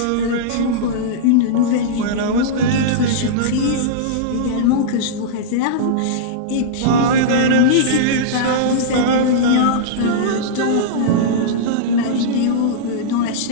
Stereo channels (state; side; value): different; both; correlation -0.03